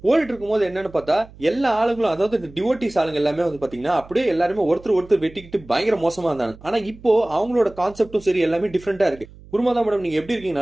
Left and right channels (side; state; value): right; noise; hum, 21 dB below the sound